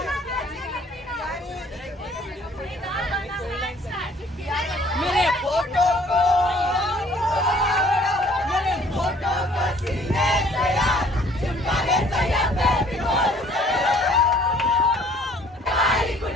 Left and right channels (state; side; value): normal; both; correlation 0.57